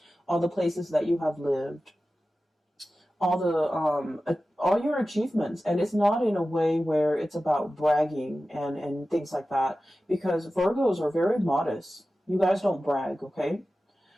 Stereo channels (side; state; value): both; normal; correlation 0.95